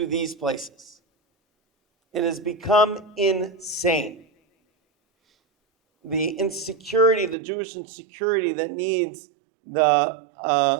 these places. It has become insane. The insecurity, the Jewish insecurity that needs the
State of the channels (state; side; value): drops out; left; at 7.4 s